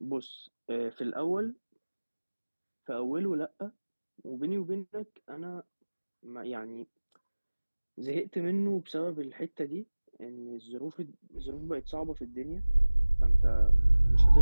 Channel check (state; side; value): inverted; both; correlation -1.00